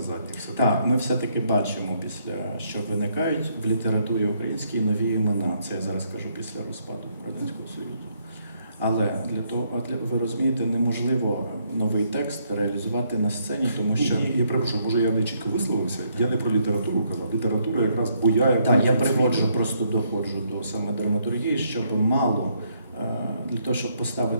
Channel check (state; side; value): inverted; both; correlation -0.72